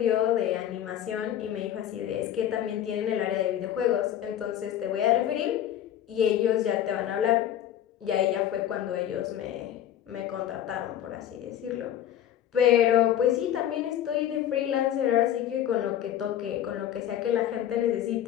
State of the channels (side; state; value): right; quieter; 11.0 dB